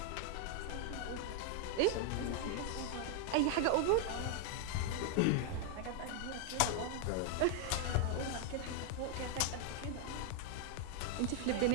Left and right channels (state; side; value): different; both; correlation 0.00